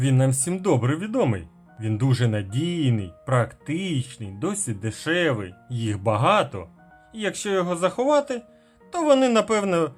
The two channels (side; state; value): both; identical; correlation 1.00